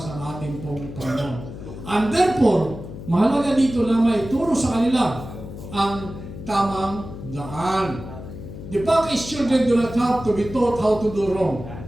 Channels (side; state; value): left; noise; hum, 11 dB below the sound